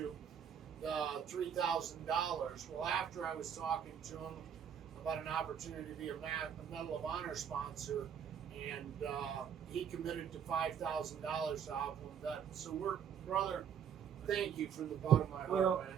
The $3,000. Well, after I was talking to him about an opportunity to be a Medal of Honor sponsor, and he committed to $5,000 to OP1VET. So brother, thank you from the bottom of my heart, man.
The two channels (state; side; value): quieter; left; 8.1 dB